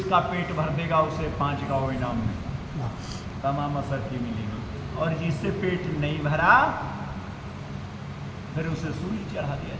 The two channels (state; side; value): identical; both; correlation 1.00